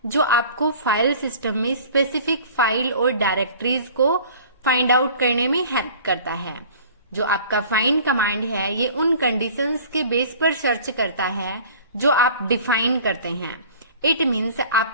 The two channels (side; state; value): both; inverted; correlation -0.46